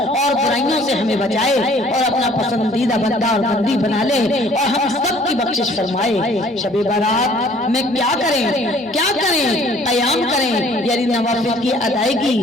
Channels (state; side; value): normal; both; correlation 0.56